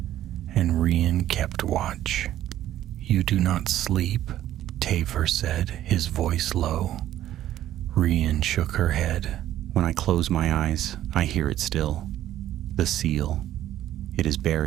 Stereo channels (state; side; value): quieter; left; 12.7 dB